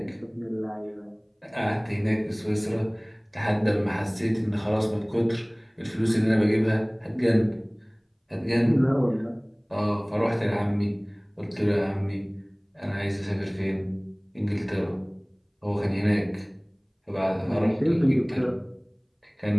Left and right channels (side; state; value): both; identical; correlation 1.00